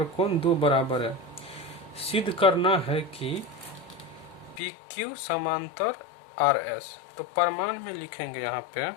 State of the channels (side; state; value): right; drops out; at 4.6 s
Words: कोण 2 बराबर है। सिद्ध करना है कि पी क्यू समांतर आर एस। तो प्रमाण में लिखेंगे, यहाँ पे